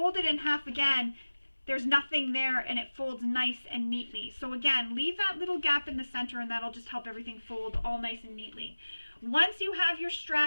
it in half again, there's nothing there and it folds nice and neatly. So again, leave that little gap in the center and that'll just help everything fold all nice and neatly. Once you have your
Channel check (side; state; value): both; inverted; correlation -1.00